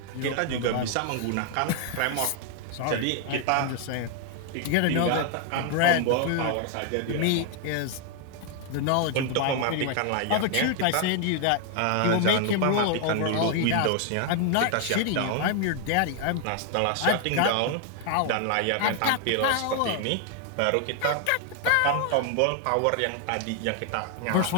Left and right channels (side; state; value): both; different; correlation 0.00